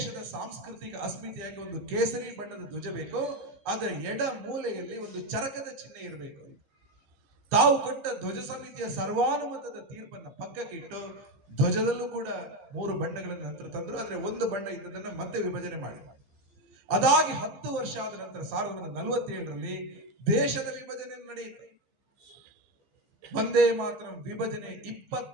ಸಾಂಸ್ಕೃತಿಕ ಅಸ್ಮಿತೆಯಾಗಿ ಒಂದು ಕೇಸರಿ ಬಣ್ಣದ ಧ್ವಜ ಬೇಕು, ಅದರ ಎಡ ಮೂಲೆಯಲ್ಲಿ ಒಂದು ಚರಕದ ಚಿಹ್ನೆ ಇರಬೇಕು. ತಾವು ಕೊಟ್ಟ ಧ್ವಜ ಸಮಿತಿಯ ಸರ್ವಾನುಮತದ ತೀರ್ಪನ್ನು ಪಕ್ಕಕ್ಕೆ ಇಟ್ಟು ಧ್ವಜದಲ್ಲೂ ಕೂಡ 3 ಬಣ್ಣಗಳನ್ನು ನಂತರ ತಂದ್ರು. ಆದ್ರೆ ಒಂದು ಬಣ್ಣ ಇದ್ದದನ್ನ ಮತ್ತೆ ವಿಭಜನೆ ಮಾಡಿ. ಅದಾಗಿ 10 ವರ್ಷ ಆದ ನಂತರ 1947ರಲ್ಲಿ ದೇಶದ ವಿಭಜನೆ ನಡೆಯಿತು. ಒಂದೇ ಮಾತ್ರ ವಿಭಜನೆ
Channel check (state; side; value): late; left; 15 ms